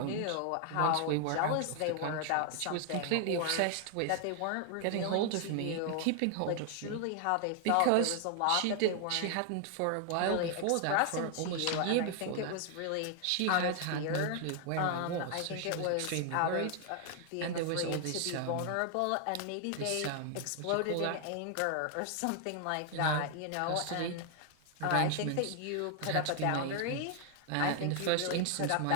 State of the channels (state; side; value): different; both; correlation 0.00